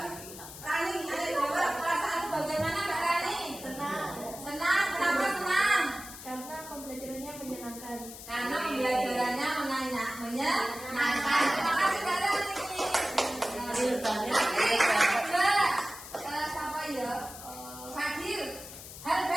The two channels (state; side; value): noise; left; hiss, 13 dB below the sound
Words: Rani, ada jawab perasaan bagaimana Mbak Rani? Senang. Senang, kenapa senang? Karena pembelajarannya menyenangkan. Karena pembelajarannya menyenangkan. Terima kasih Mbak Rani. Siapa ya? Fadil. Hal